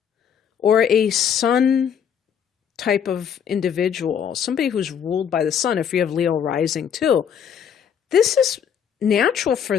or a sun type of individual, somebody who's ruled by the sun, if you have Leo rising too, this is natural for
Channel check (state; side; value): quieter; right; 8.0 dB